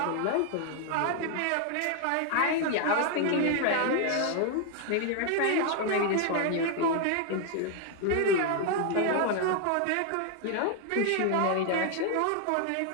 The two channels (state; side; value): different; both; correlation 0.00